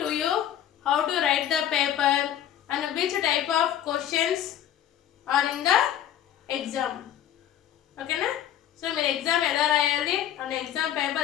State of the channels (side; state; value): right; quieter; 10.7 dB